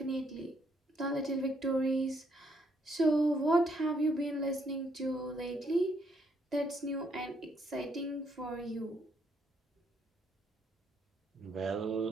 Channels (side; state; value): both; normal; correlation 0.71